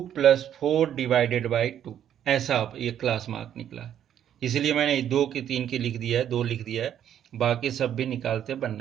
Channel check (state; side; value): quieter; left; 10.1 dB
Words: + 4 डिवाइडेड बाय 2, ऐसा ये क्लास मार्क निकला है। इसलिए मैंने 2 की 3 की लिख दिया है, 2 लिख दिया है, बाकी सब भी निकालते